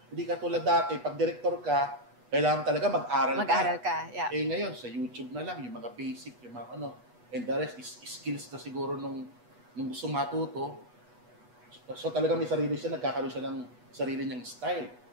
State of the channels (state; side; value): late; left; 8.2 ms